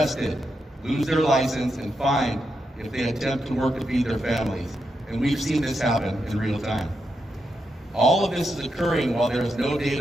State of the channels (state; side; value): normal; both; correlation 0.84